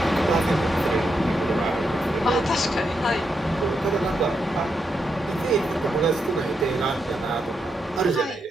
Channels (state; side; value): normal; both; correlation 0.83